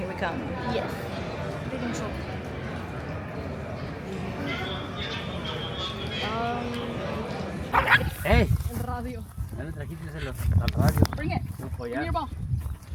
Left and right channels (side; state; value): both; identical; correlation 1.00